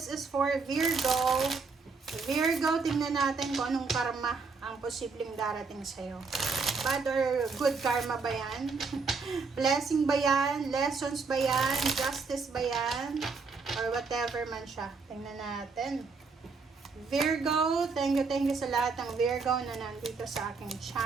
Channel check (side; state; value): left; quieter; 4.6 dB